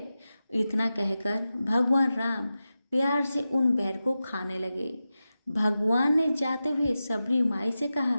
इतना कहकर भगवान राम प्यार से उन बैर को खाने लगे। भगवान ने जाते हुए सबरी माई से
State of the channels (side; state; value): both; inverted; correlation -0.93